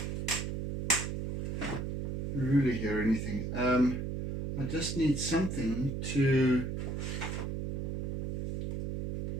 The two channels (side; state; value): right; noise; hum, 2 dB below the sound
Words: ruler here or anything. I just need something to